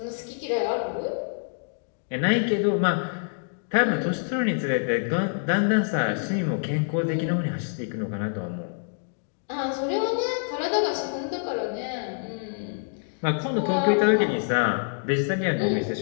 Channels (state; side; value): silent; right; digital silence